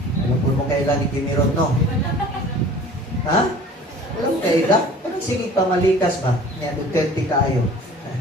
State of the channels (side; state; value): both; normal; correlation 0.46